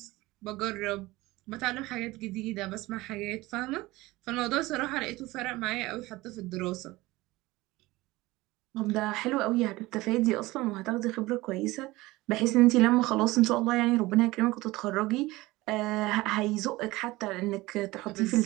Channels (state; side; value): quieter; left; 19.8 dB